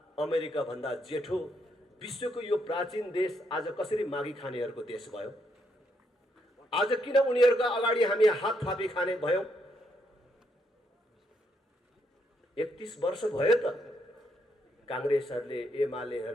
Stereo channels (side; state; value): both; normal; correlation 0.76